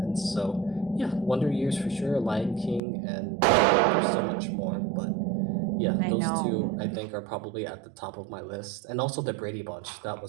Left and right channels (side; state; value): left; drops out; at 2.8 s